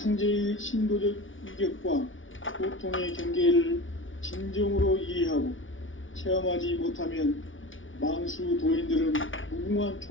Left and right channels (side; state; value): right; late; 0.57 ms